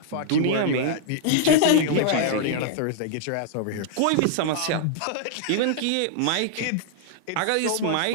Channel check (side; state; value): both; different; correlation -0.01